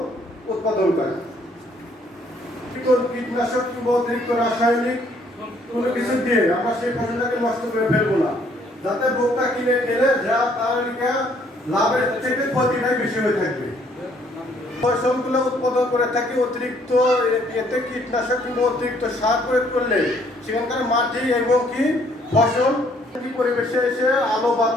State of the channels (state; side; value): normal; both; correlation 0.64